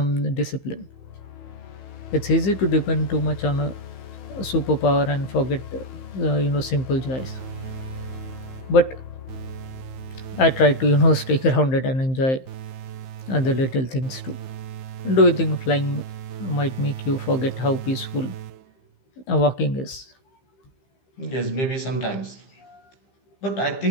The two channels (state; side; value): late; right; 15 ms